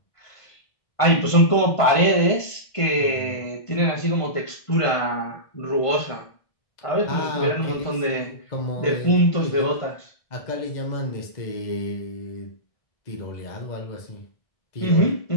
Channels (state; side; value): late; right; 1.5 ms